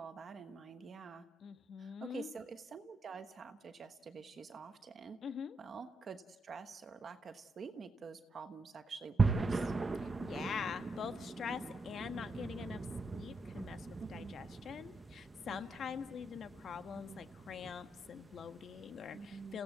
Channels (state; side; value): normal; both; correlation 0.82